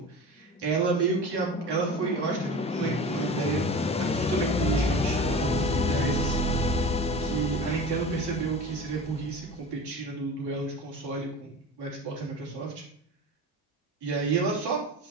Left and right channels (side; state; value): both; normal; correlation 0.34